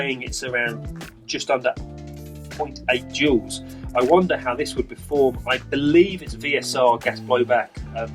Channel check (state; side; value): identical; both; correlation 1.00